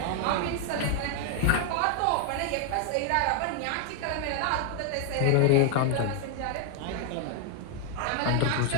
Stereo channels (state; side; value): different; both; correlation 0.00